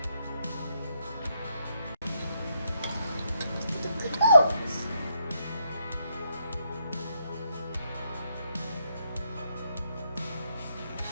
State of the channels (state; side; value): inverted; both; correlation -0.78